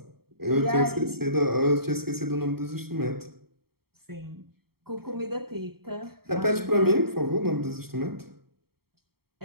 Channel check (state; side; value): late; left; 0.95 ms